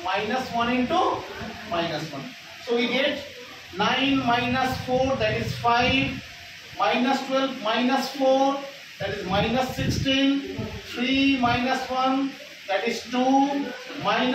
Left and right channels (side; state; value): both; identical; correlation 1.00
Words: minus 1 into minus 1. So we get 9 minus 4, that is 5, minus 12 minus 4, that is minus 16, 3 minus 1, that is 2,